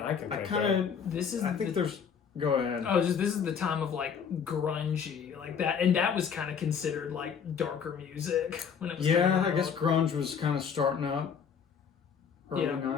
I can I think kind of. of. This is. I think the, there's. Go ahead. Oh, this is the time of like grungy, like that, and that was kind of considered like darker music when it was. Yeah, coming I guess out. grunge was kind of starting up. Early Yeah.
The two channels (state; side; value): quieter; right; 7.0 dB